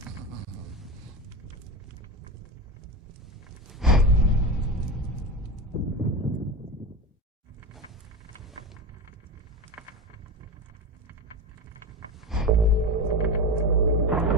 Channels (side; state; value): both; normal; correlation 0.22